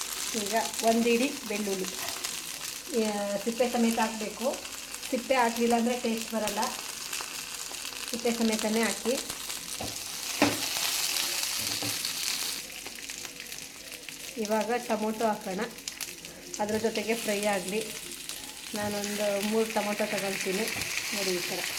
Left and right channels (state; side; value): identical; both; correlation 1.00